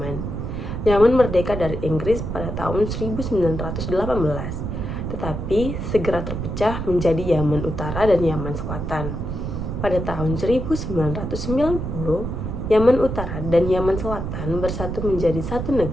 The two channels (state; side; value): noise; right; rumble, 4 dB below the sound